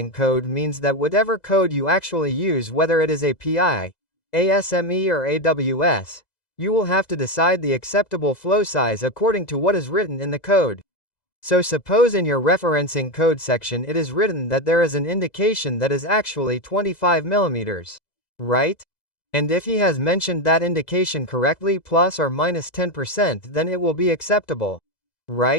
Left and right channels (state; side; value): late; right; 2.0 ms